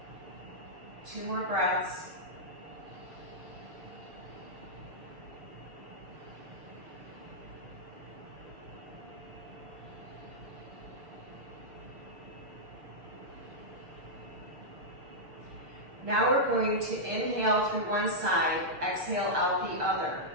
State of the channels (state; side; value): late; left; 6.6 ms